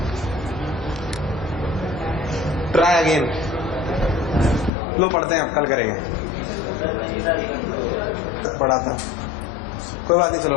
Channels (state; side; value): drops out; right; at 4.7 s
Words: ट्राई अगेन, लो पढ़ते हैं, अब कल करेंगे। पढ़ा था, कोई बात नहीं,